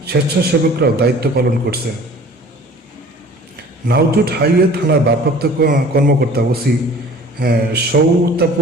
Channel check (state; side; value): normal; both; correlation 0.47